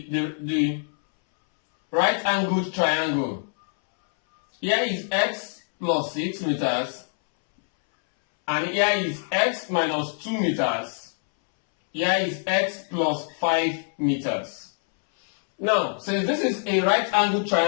right-angled triangle. Here is x plus 6 meters, and here is x minus 2 meters. Here is x plus 5 meters. Now, since this is a right-angled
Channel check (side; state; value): right; silent; 62 dB below the other